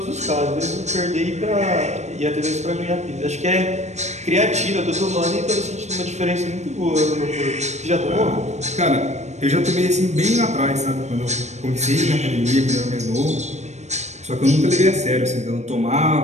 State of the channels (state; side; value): late; left; 0.33 ms